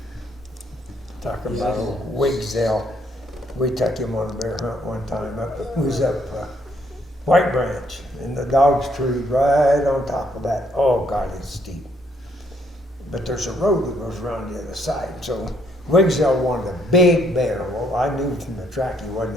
Talking about old Wigzell, we took him on a bear hunt one time we was up White Branch, and the dog's tree right on top of that. Oh God, it's steep. But there's a road that goes around the other side. So Wigzell wanted a big bear. Well, I knew from the track he wasn't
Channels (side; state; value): both; normal; correlation 0.69